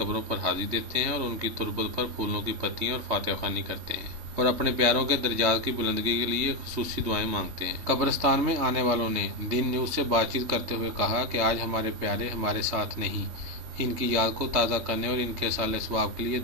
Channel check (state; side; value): late; left; 3.1 ms